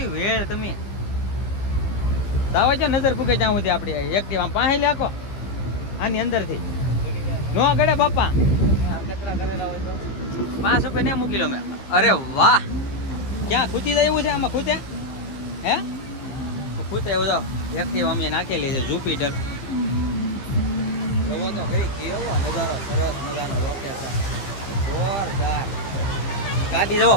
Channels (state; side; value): late; right; 15 ms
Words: વેળ તમે દાવા જો નજર પૂકે ત્યાં સુધી આપણે એક્ટિવ આમ પાસે લાખો આની અંદરથી નો ગળે બાપા કચરા કરેલા હોય તો 5 રૂપિયા ને મૂકી લો મેં અરે વાહ ક્યાં ખૂતી જાય એવું છે આમાં ખૂતે હે ખૂતે એવું તો એક્ટિવ અમે નાખેલી છે જુપિટર જવો તો ખરી કેવો નજારો સરસ મજાનો લોકેશન જોરદાર ગાડી જો